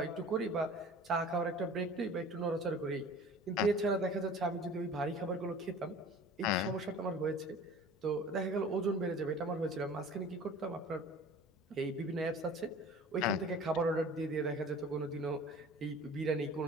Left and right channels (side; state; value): both; normal; correlation 0.43